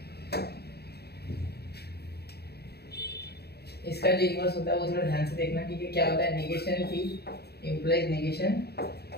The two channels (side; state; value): right; late; 0.47 ms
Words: इसका जो इन्वर्स होता है वो थोड़ा ध्यान से देखना, ठीक है। क्या होता है, negation P implies negation